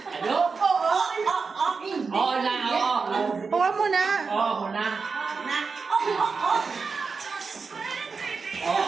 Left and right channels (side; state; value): left; quieter; 4.8 dB